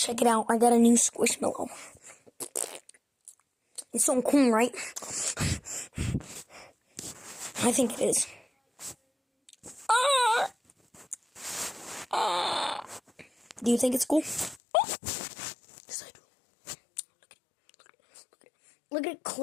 it out. I got a new squishmallow. It's so cool, right? I think it is. Do you think it's cool? Yes, I do. Look at it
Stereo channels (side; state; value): right; drops out; at 14.6 s